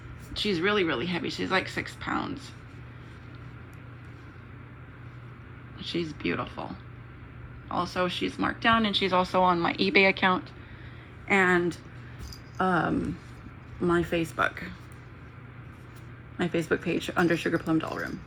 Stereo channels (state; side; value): identical; both; correlation 1.00